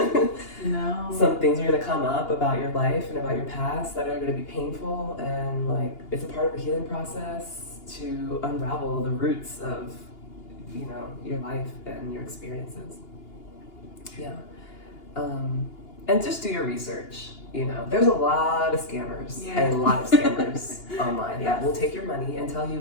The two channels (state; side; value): late; right; 2.8 ms